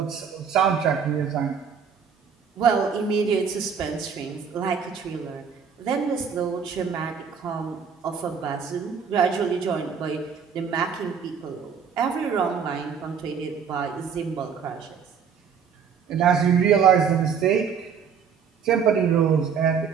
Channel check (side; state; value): left; quieter; 6.8 dB